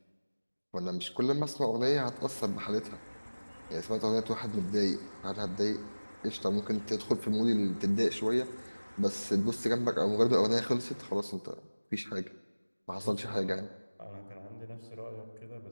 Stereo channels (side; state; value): both; inverted; correlation -1.00